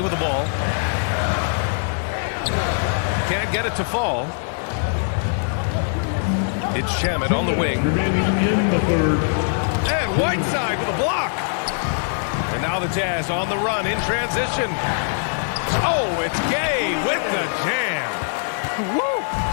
with the ball. Can't get it to fall. It's Shamet on the wing. And Whiteside with a block. And now the Jazz on the run in transition. Oh, it's Gay with the jam. Woo!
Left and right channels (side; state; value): right; silent; digital silence